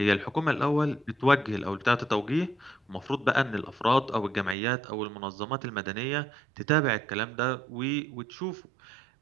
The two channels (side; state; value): left; drops out; at 4.5 s